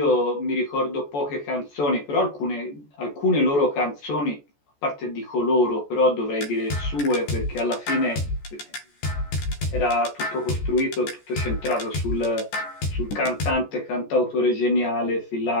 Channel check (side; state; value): right; late; 14 ms